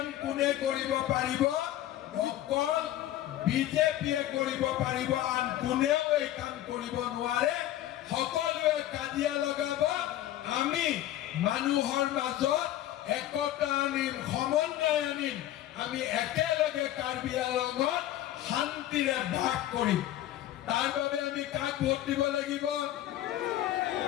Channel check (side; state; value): right; quieter; 13.3 dB